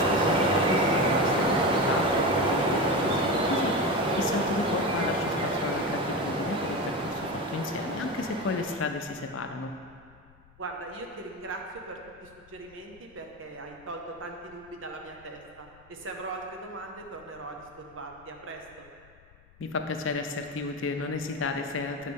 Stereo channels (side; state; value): left; noise; rumble, 27 dB below the sound